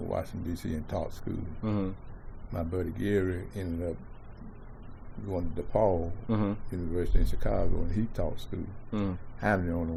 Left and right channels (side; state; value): both; identical; correlation 1.00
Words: Washington, D.C. and taught school. My buddy Gary ended up going to DePaul University in Chicago, and he taught school. I'm the only